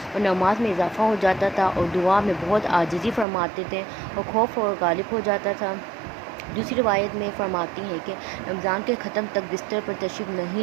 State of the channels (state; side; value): drops out; left; at 3.2 s